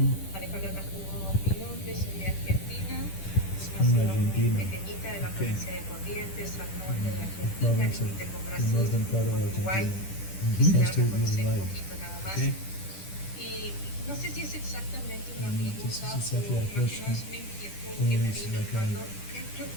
Alejandra Castro, mi nombre, soy de Argentina, una ciudad pequeñita de la provincia de Corrientes, al norte de Argentina, límite con Brasil, con Uruguay. Quisiera conocer un poquito nada más. Y no sé si es exactamente una pregunta o más una inquietud que me vino cuando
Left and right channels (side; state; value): right; late; 10 ms